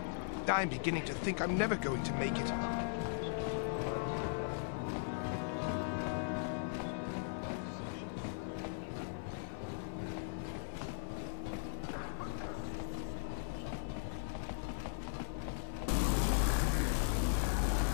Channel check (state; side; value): silent; right; 52 dB below the other